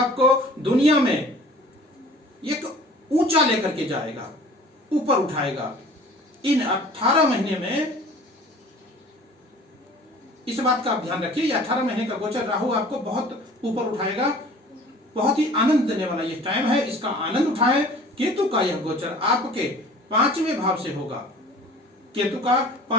दुनिया में एक ऊंचा लेकर के जाएगा, ऊपर उठाएगा। इन 18 महीने में इस बात का आप ध्यान रखिए, ये 18 महीने का गोचर राहु आपको बहुत ऊपर उठाएगा। बहुत ही आनंद देने वाला ये टाइम है, इसका आनंद उठाएं। केतु का यह गोचर आपके 5वें भाव से होगा। केतु का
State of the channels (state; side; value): normal; both; correlation 0.47